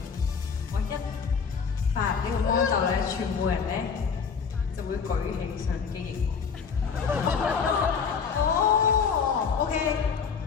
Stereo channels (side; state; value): right; quieter; 6.1 dB